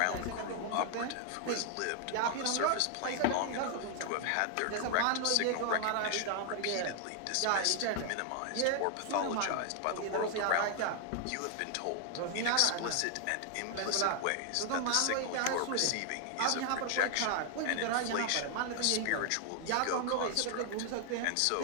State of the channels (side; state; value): both; different; correlation 0.00